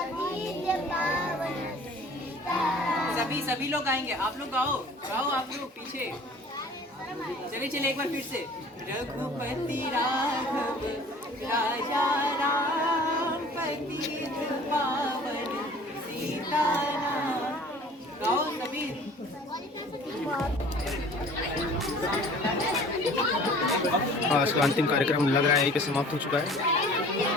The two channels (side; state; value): both; normal; correlation 0.48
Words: पावन सीता। सभी लोग गाएंगे, आप लोग गाओ गाओ, आप लोग पीछे। चलिए चलिए एक बार फिर से। रघुपति राघव राजा राम पतित पावन सीता नाम। गाओ सभी। आज का अंतिम कार्यक्रम लग रहा है यहीं पे समाप्त हो चुका है।